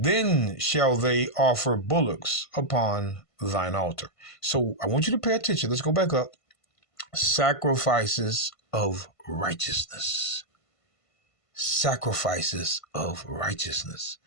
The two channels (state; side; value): late; right; 1.5 ms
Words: shall they offer bullocks upon thine altar. So I want you to pay attention. Let's go back up. Sacrifices of righteousness. Sacrifices of righteousness.